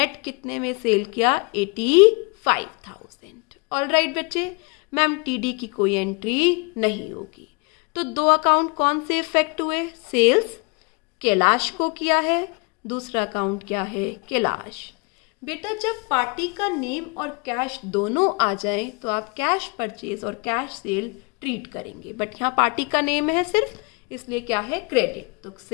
कितने में सेल किया? 85,000। ऑल राइट बच्चे, मैम टीडी की कोई एंट्री नहीं होगी। तो दो अकाउंट कौन से इफेक्ट हुए? सेल्स कैलाश को किया है, दूसरा अकाउंट क्या है? कैलाश। बेटा जब पार्टी का नेम और कैश दोनों आ जाए तो आप कैश परचेज और कैश सेल ट्रीट करेंगे, बट यहाँ पार्टी का नेम है सिर्फ, इसलिए क्या है? क्रेडिट। तो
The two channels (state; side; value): quieter; right; 31.1 dB